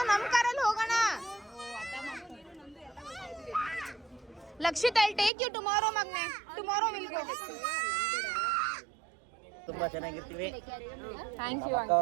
ನಮ್ಮ ಕಾರಲ್ಲಿ ಹೋಗೋಣ. Lakshith I take you tomorrow ಮಗ್ನೆ. Tomorrow will go. ತುಂಬಾ ಚೆನ್ನಾಗಿರ್ತೀವಿ. ಥ್ಯಾಂಕ್ ಯು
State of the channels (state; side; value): drops out; left; at 5.3 s